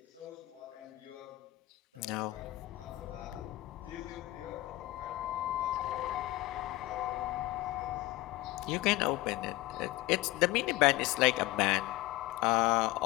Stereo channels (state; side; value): quieter; right; 18.6 dB